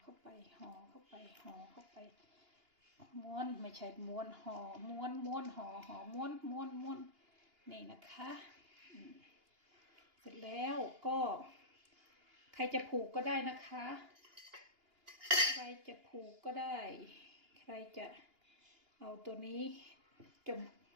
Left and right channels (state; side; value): late; left; 2.9 ms